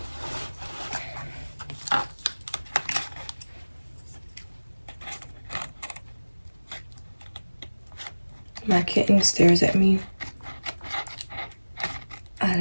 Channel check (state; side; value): inverted; both; correlation -1.00